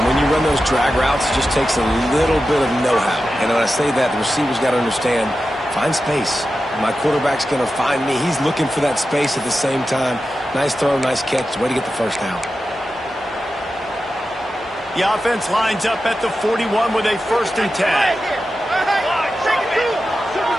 when you run those drag routes, it just takes a little bit of know-how. And when I say that, the receiver's got to understand, find space. My quarterback's going to find me. He's looking for that space at the same time. Nice throw, nice catch. Way to get the first down. The offense lines up at the 41 with a 1st and 10.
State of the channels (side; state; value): both; normal; correlation 0.92